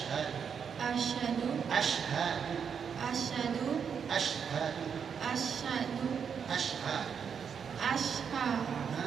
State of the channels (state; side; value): quieter; left; 7.0 dB